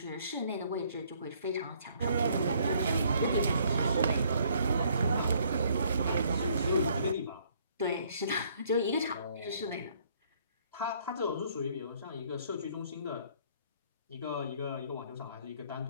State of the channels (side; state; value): both; inverted; correlation -0.64